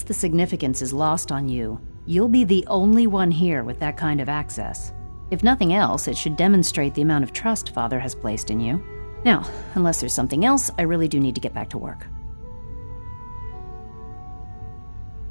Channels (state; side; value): inverted; both; correlation -1.00